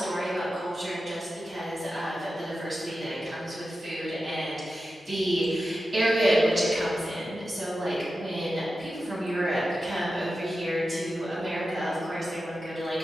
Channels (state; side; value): normal; both; correlation 0.92